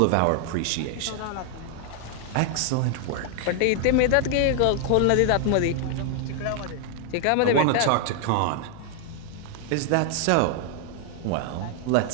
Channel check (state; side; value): different; both; correlation 0.00